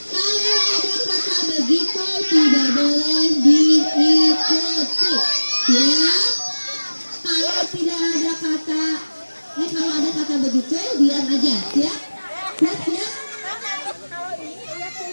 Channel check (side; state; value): both; inverted; correlation -1.00